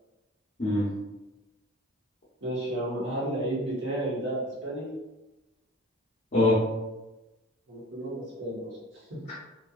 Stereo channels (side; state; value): both; normal; correlation 0.44